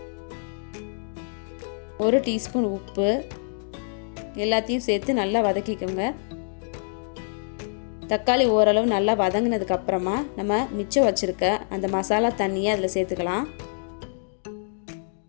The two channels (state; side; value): silent; right; digital silence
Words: 1 டீஸ்பூன் உப்பு, எல்லாத்தையும் சேர்த்து நல்லா வதக்கிக்கோங்க. தக்காளி ஓரளவு நல்லா வதங்கினதுக்கு அப்புறமா நம்ம மிச்சம் வச்சிருக்க அந்த மசாலா தண்ணியை அதில் சேர்த்துக்கலாம்.